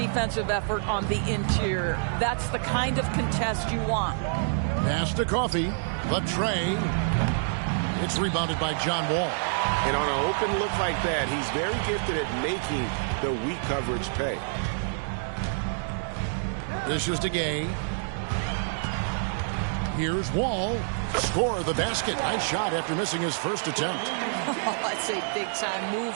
effort on the interior. That's the kind of contest you want. Pass to Coffee. The tray. It's rebounded by John Wall. And on an open look like that, he's very gifted at making the weak coverage pay. This is to Gay. Here's Wall. Score the basket. Nice shot after missing his first attempt. Oh, that's a big-time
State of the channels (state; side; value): silent; left; digital silence